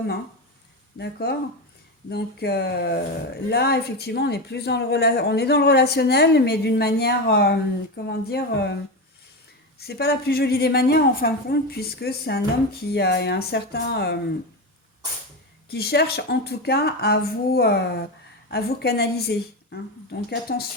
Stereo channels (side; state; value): both; normal; correlation 0.17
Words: hein. D'accord? Là, effectivement, on est plus on est dans le relationnel, mais d'une manière, comment dire, c'est pas la plus jolie des manières en fin de compte, puisque c'est un homme qui a un certain, qui cherche en tout cas à vous canaliser, hein. Donc